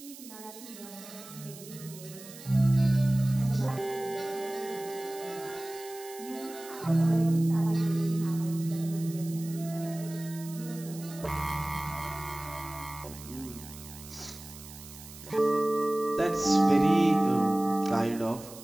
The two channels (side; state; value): right; noise; hiss, 16 dB below the sound